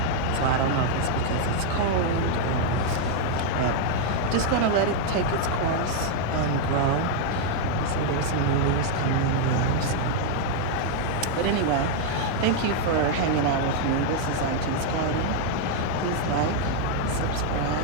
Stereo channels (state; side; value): different; both; correlation 0.00